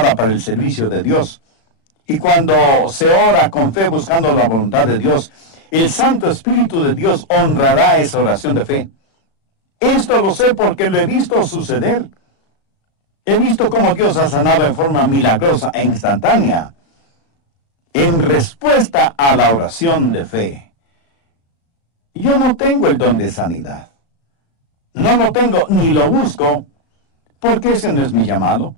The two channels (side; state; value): right; late; 36 ms